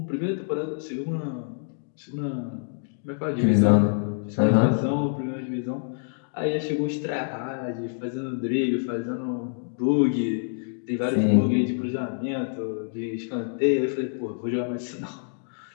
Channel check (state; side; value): silent; right; digital silence